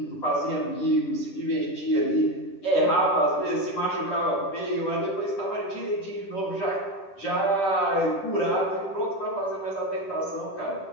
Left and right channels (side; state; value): right; late; 10 ms